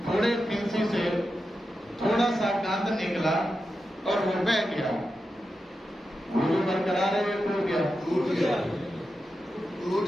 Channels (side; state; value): both; normal; correlation 0.90